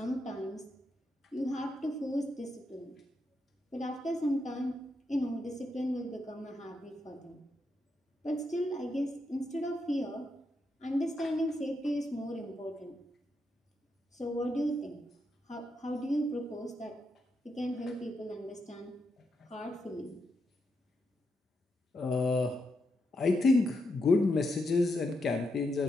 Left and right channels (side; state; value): both; normal; correlation 0.83